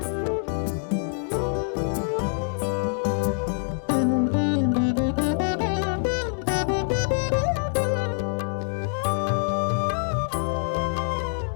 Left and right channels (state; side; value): silent; right; digital silence